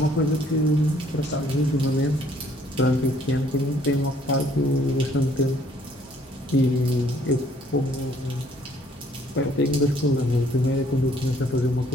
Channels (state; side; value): normal; both; correlation 0.62